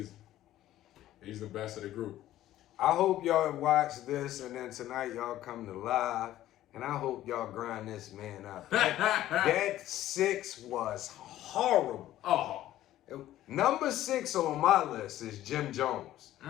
He's the best of the group. I hope y'all watch this and then tonight y'all come to live. And I hope y'all grind this man up. That 6 was horrible. Oh. Number 6 on my list is Jim Jones.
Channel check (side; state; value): right; quieter; 13.8 dB